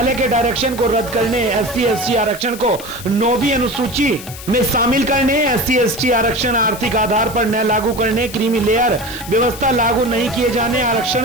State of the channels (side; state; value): left; noise; hiss, 14 dB below the sound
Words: के डायरेक्शन को रद्द करने, SC/ST आरक्षण को 9वीं अनुसूची में शामिल करने, SC/ST आरक्षण आर्थिक आधार पर न लागू करने, क्रीमी लेयर व्यवस्था लागू नहीं किए जाने,